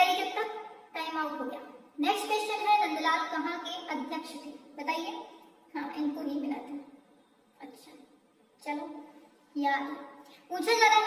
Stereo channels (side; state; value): both; identical; correlation 1.00